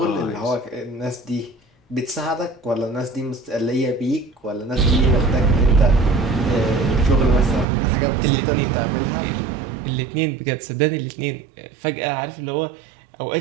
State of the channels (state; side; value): drops out; left; at 7.7 s